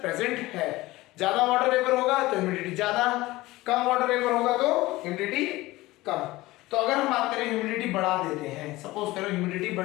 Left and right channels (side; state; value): right; quieter; 18.9 dB